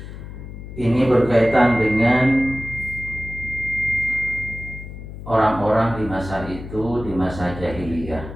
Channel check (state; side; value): noise; left; hum, 12 dB below the sound